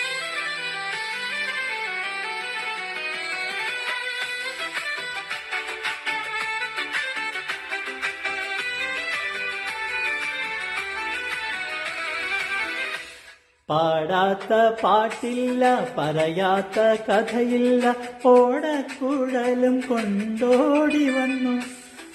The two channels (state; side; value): identical; both; correlation 1.00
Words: പാടാത്ത പാട്ടില്ല, പറയാത്ത കഥയില്ല, ഓടക്കുഴലും കൊണ്ടോടി വന്നു.